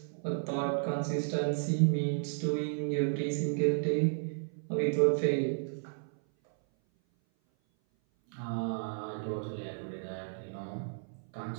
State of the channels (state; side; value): silent; left; 56 dB below the other